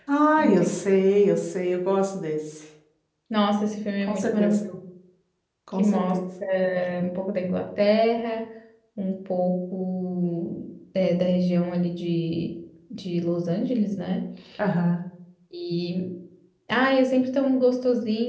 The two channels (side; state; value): both; identical; correlation 1.00